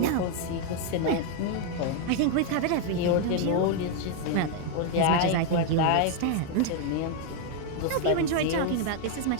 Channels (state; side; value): different; both; correlation 0.01